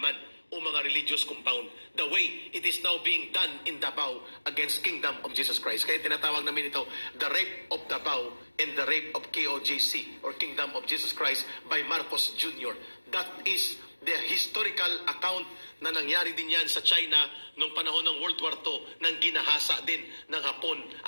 man o mga religious compound. The way it is now being done in Davao against Kingdom of Jesus Christ. Kaya tinatawag namin ito, the rape of Davao and the rape of KOJC or Kingdom of Jesus Christ by Marcos Jr. That is the historical account na nangyari din yan sa China noong panahon ng World War II nang ginahasa din ng Hapon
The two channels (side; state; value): both; inverted; correlation -1.00